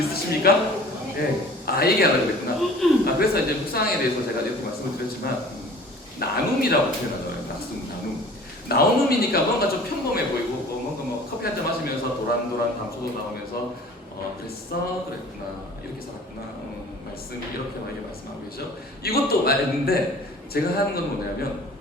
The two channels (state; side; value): normal; both; correlation 0.46